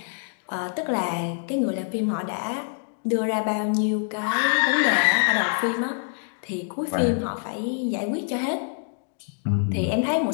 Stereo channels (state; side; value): silent; right; digital silence